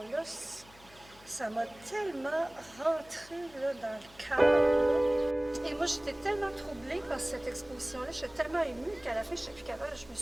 Ça m'a tellement rentré là, dans le cœur. Et moi, j'étais tellement troublée par cette exposition-là, j'étais tellement émue qu'à la fin, je n'étais plus capable, je me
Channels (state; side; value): noise; left; hum, 24 dB below the sound